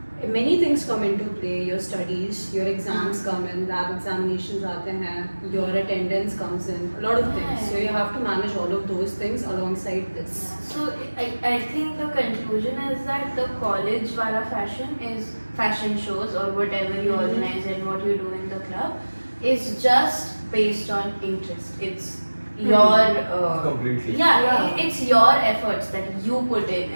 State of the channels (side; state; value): both; inverted; correlation -1.00